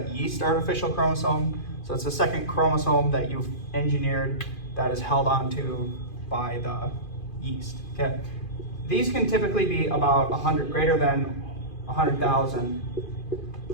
yeast artificial chromosome. So it's a second chromosome that you've engineered that is held onto by the yeast. Okay. These can typically be about 100, greater than 100,000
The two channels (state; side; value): late; right; 2.5 ms